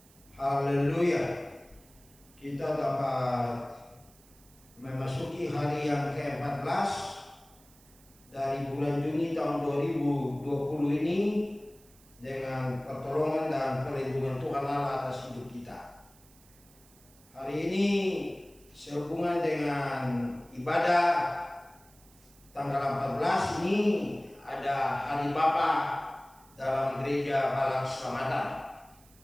Haleluya. Kita dapat memasuki hari yang ke-14 dari bulan Juni tahun 2020 ini dengan pertolongan dan perlindungan Tuhan Allah atas hidup kita. Hari ini sehubungan dengan ibadah tanggal 14 ini ada Hari Bapa dalam gereja Balang Selamatan.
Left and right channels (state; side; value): noise; right; hiss, 27 dB below the sound